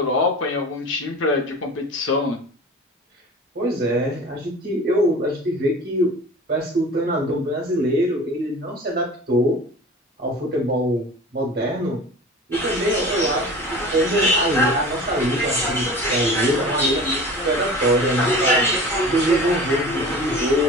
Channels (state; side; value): normal; both; correlation 0.39